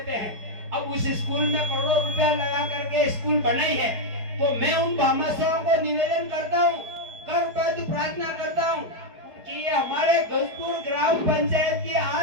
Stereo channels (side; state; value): left; late; 4.9 ms